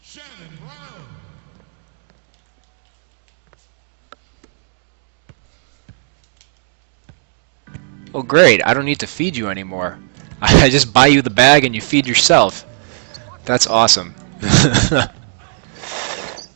Oh great, I don't need to feed you anymore. I just buy you the bag and you feed yourself. That's awesome.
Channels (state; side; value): silent; left; digital silence